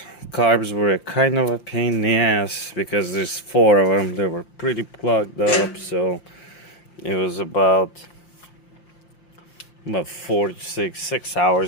Carbs were kind of a pain in the ass because there's 4 of them. They were pretty plugged up, so it was about 4 to 6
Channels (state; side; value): late; right; 5.8 ms